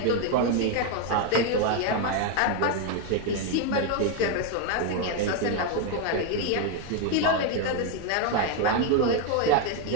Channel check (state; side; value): different; both; correlation 0.01